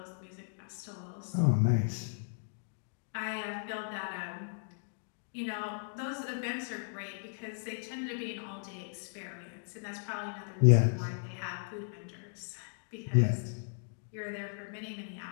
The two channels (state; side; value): silent; right; digital silence